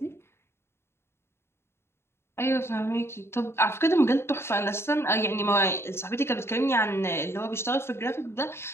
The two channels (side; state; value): right; late; 0.12 ms